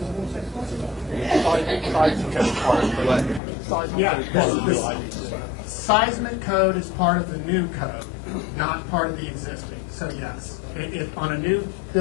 6 months ago. Yeah, the seismic code is part of the new code, not part of the existing. So yes, on a new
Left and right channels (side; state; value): right; drops out; at 3.4 s